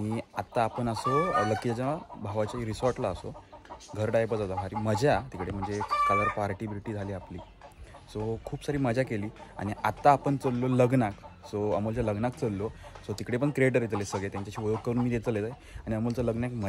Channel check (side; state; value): both; identical; correlation 1.00